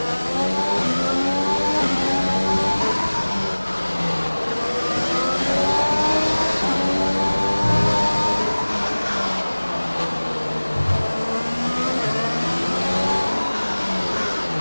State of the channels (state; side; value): inverted; both; correlation -1.00